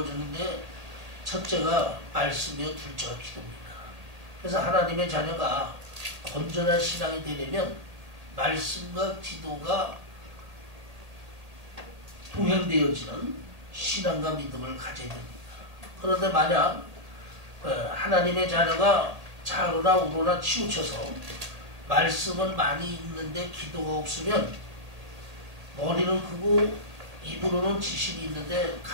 첫째가 말씀이요, 둘째가 기도입니다. 그래서 하나님의 자녀가 건전한 신앙이 되려면 말씀과 기도가 동행되어지는 신앙과 믿음을 가져야 됩니다. 그런데 만약 하나님의 자녀가 좌로나 우로나 치우쳐서 말씀은 많이 있는데 기도가 없으면 머리는 크고 입으로는 지식이 있는데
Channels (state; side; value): late; left; 1.8 ms